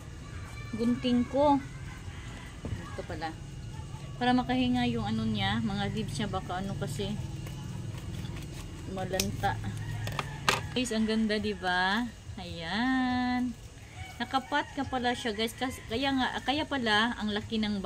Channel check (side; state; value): both; identical; correlation 1.00